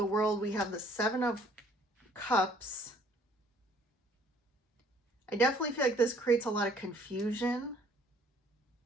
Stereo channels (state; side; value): normal; both; correlation 0.59